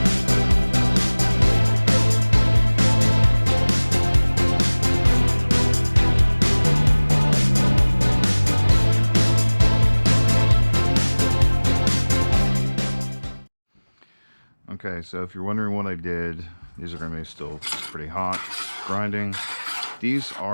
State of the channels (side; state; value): both; inverted; correlation -1.00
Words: Okay, so if you're wondering what I did, these are going to be still pretty hot, grinding. These